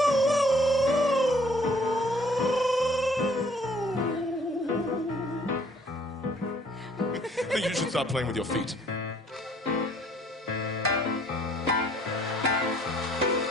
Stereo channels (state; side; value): normal; both; correlation 0.59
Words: start playing with your feet.